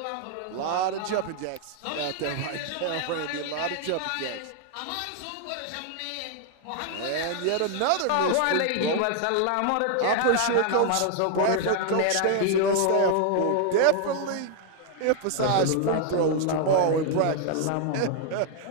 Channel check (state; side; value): different; both; correlation 0.00